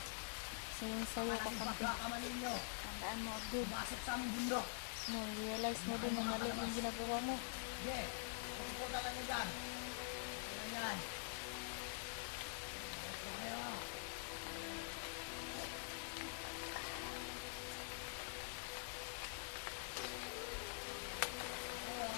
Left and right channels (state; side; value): silent; right; digital silence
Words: Sayang-sayo ka Malaking kampi. pagkakamanin nyo. Tandaan mo, Abdul. Pumasok sa aming bundok. No, realize mo din na mali yung ginagawa mo. Sige, pupunta lang nyo dyan. Ano yan? Ito kayo.